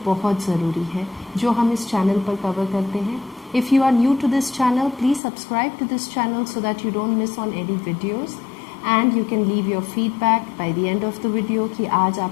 बहुत ज़रूरी है जो हम इस चैनल पर कवर करते हैं। If you are new to this channel, please subscribe to this channel so that you don't miss on any videos and you can leave your feedback by the end of the video कि आज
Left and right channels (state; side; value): drops out; right; at 5.2 s